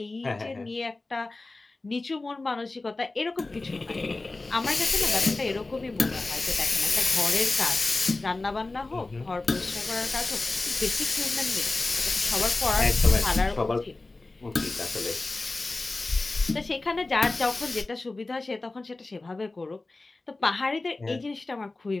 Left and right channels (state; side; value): quieter; right; 3.2 dB